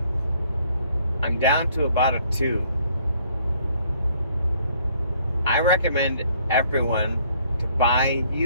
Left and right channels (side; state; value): both; inverted; correlation -0.63